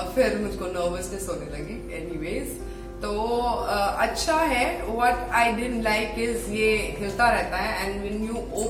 फिर मुझको नर्वसनेस होने लगी. एनीवेज तो अच्छा है. What I didn't like is ये हिलता रहता है and when you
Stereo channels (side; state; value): both; identical; correlation 1.00